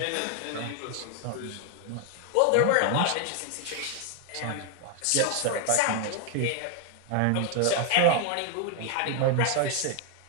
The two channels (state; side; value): different; both; correlation 0.01